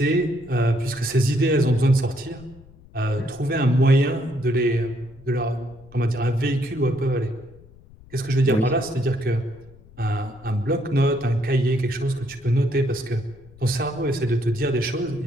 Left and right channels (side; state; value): left; noise; rumble, 23 dB below the sound